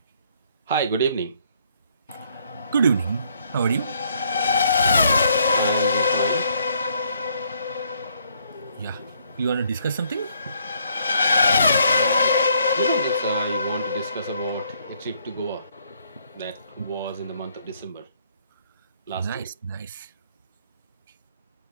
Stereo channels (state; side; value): inverted; both; correlation -0.68